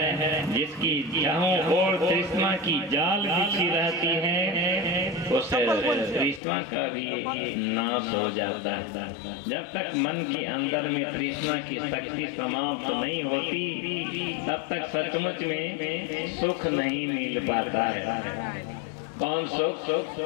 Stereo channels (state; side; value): drops out; right; at 6.4 s